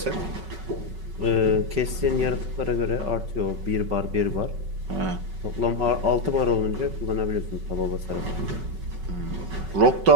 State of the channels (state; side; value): late; left; 5.3 ms